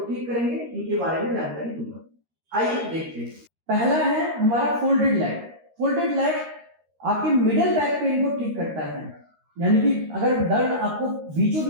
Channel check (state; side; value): late; left; 13 ms